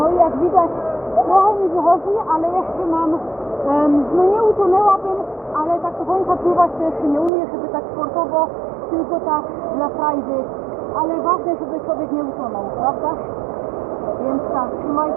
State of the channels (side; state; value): left; drops out; at 7.3 s